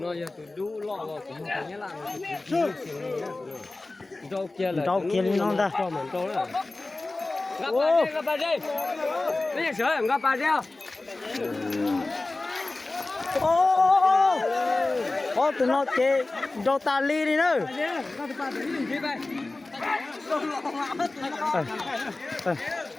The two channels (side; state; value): right; quieter; 3.1 dB